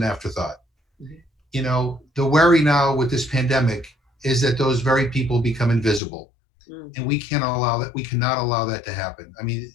afterthought. Mm-hmm. The worry now with this pandemic is that those very people become invisible. Mm-hmm. And we cannot allow that to happen. I mean,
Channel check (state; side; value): drops out; right; at 6.0 s